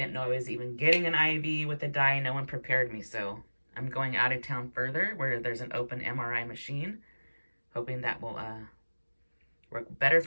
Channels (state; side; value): inverted; both; correlation -1.00